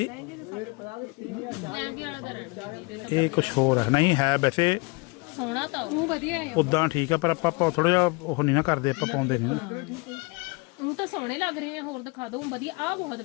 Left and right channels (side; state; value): right; quieter; 27.9 dB